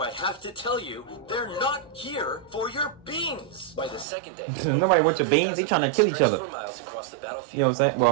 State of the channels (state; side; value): drops out; left; at 4.0 s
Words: I have to tell you they're not here for your beans? By the second day, Nobody wants your beans. They trying to kill each other. for miles across the battlefield. You know what I'm saying?